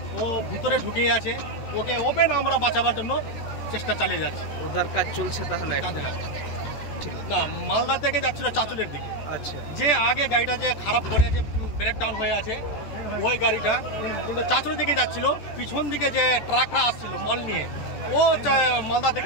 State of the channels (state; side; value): late; right; 14 ms